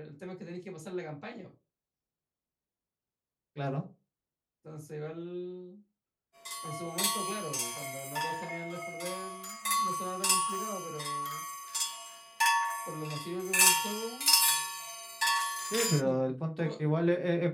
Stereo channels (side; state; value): both; identical; correlation 1.00